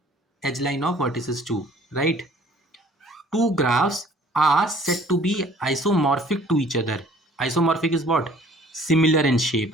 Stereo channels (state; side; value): normal; both; correlation 0.54